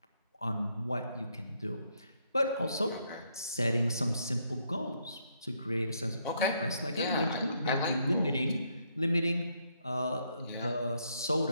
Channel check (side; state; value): both; inverted; correlation -0.74